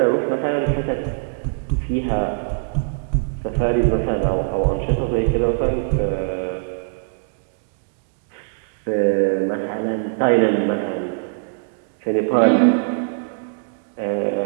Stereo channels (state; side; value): silent; left; digital silence